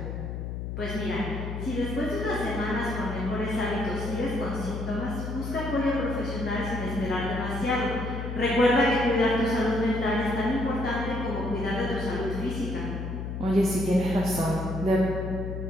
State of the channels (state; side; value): noise; left; hum, 5 dB below the sound